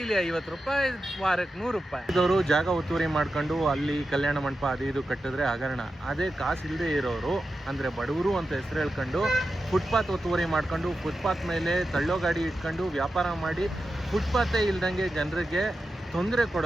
50 ರೂಪಾಯಿ, ವಾರಕ್ಕೆ 100 ರೂಪಾಯಿ. ಇದವರು ಜಾಗ ಒತ್ತುವರಿ ಮಾಡ್ಕೊಂಡು ಅಲ್ಲಿ ಕಲ್ಯಾಣ ಮಂಟಪ ಅದು ಇದು ಕಟ್ಟಿದ್ರೆ ಹಗರಣ. ಅದೇ ಕಾಸು ಇಲ್ಲದೆ ಇರೋರು ಅಂದರೆ ಬಡವರು ಅಂತ ಹೆಸರು ಹೇಳ್ಕೊಂಡು ಫುಟ್ಪಾತ್ ಒತ್ತುವರಿ ಮಾಡ್ಕೊಂಡು ಫುಟ್ಪಾತ್ ಮೇಲೆ ತಳ್ಳೋ ಗಾಡಿ ಇಟ್ಕೊಂಡು ವ್ಯಾಪಾರ ಮಾಡಿ ಫುಟ್ಪಾತೇ ಇಲ್ದಂಗೆ ಜನರಿಗೆ ತೊಂದರೆ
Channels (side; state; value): both; normal; correlation 0.91